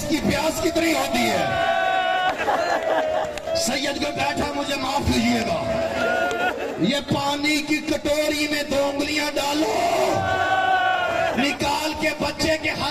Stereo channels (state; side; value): identical; both; correlation 1.00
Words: प्यास कितनी होती है? सैयद को बैठा, मुझे माफ कीजिएगा, ये पानी की कटोरी में 2 उंगलियां डालो, निकाल के बच्चे के